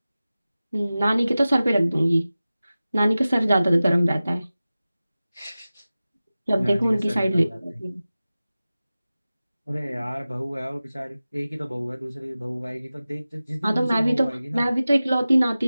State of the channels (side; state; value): both; inverted; correlation -0.96